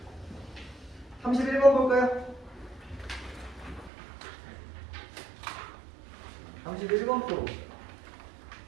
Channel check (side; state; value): left; drops out; at 3.9 s